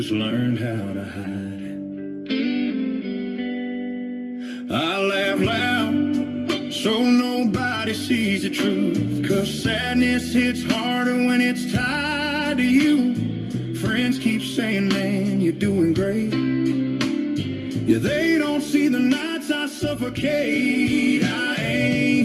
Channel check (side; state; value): both; identical; correlation 1.00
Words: learned how to hide it. I laugh loud so nobody sees the truth, 'cause sadness hits harder when it's tied to you. Friends keep saying, man, you're doing great. Yeah, they don't see the nights I suffocate. I